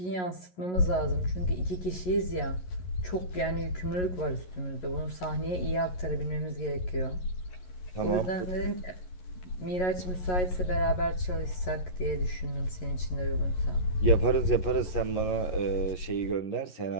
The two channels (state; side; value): late; right; 11 ms